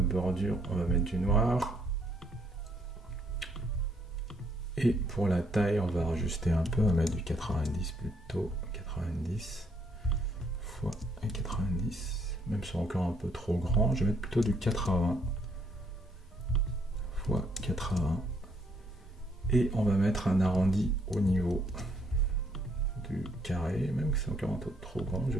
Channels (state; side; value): normal; both; correlation 0.70